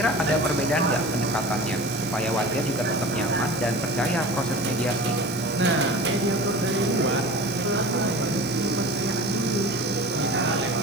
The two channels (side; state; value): left; noise; hiss, 19 dB below the sound